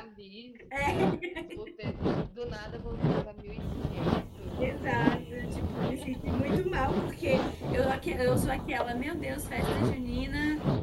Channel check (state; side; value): identical; both; correlation 1.00